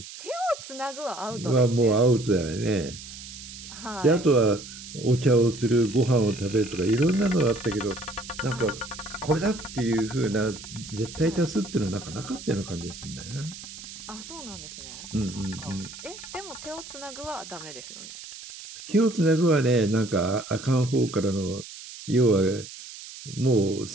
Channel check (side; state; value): right; noise; hiss, 14 dB below the sound